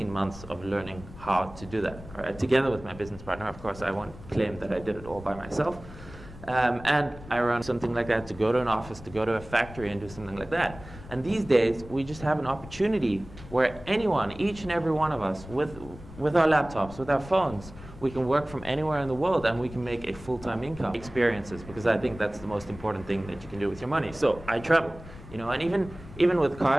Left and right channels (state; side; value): noise; left; rumble, 16 dB below the sound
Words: months of learning how to do that. All right, together with my business partner. Of course, I won't claim that I did it all by myself. And I run something like that, to go to an office, to go to a factory and do something like that. And these days, we just have an opportunity where anyone, each and every one of us, with our laptops, with our phones, we can work from anywhere in the world and we can make a full-time income. Experiences, because I think that's the most important thing that you can do with your money. So I travel, you know, and even with